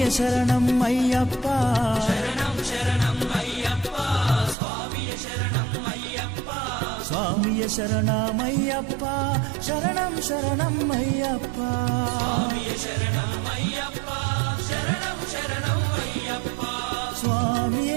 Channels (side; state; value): left; drops out; at 4.5 s